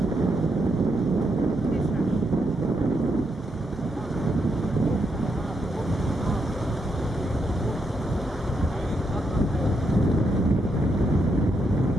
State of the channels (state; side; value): normal; both; correlation 0.80